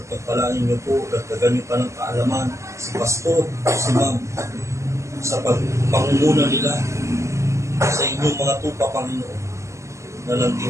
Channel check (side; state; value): left; late; 0.14 ms